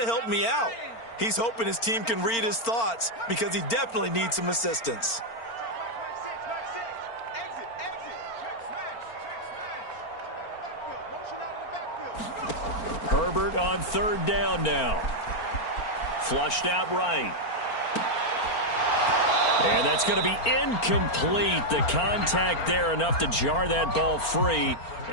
help me out. He's hoping his team can read his thoughts because he definitely needs some assistance. Herbert on 3rd down now. Flushed out right. And that's going to be incomplete. The contact there enough to jar that ball free.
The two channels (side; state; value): right; late; 4.4 ms